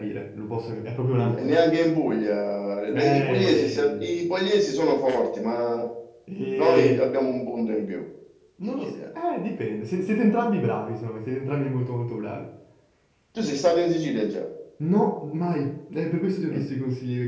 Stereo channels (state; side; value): identical; both; correlation 1.00